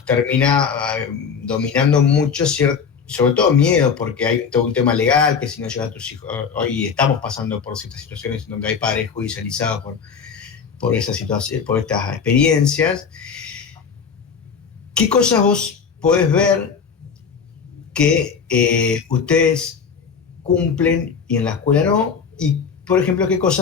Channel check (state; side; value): quieter; right; 6.2 dB